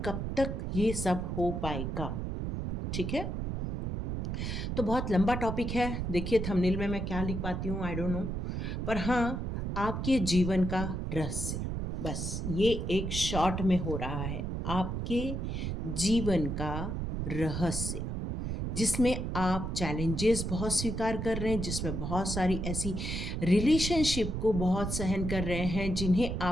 कब तक ये सब हो पाएगा? ठीक है, तो बहुत लंबा टॉपिक है। देखिए थंबनेल में मैं क्या लिख पाती हूँ, आई डोंट नो, पर हाँ, आपके जीवन का रहस्य, बस ये एक शॉर्ट में हो रहा है। आपके जीवन का रहस्य, जिसमें आप चैलेंजेस बहुत स्वीकार कर रहे हैं, जिसमें बहुत सारी ऐसी रिलेशनशिप को बहुत सहन कर रहे हैं जिन्हें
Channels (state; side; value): noise; right; rumble, 2 dB below the sound